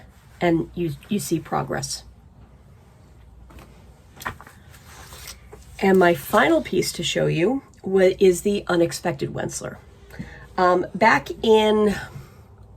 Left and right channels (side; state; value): both; identical; correlation 1.00